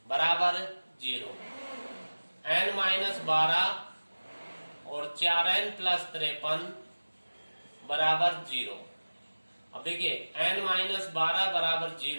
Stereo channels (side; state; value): both; inverted; correlation -1.00